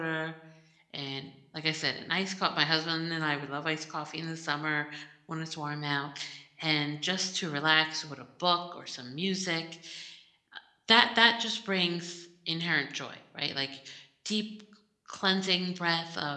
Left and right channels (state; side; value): identical; both; correlation 1.00